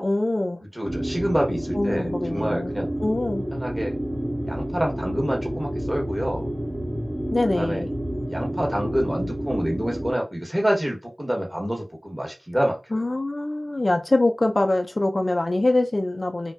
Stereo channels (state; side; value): normal; both; correlation 0.98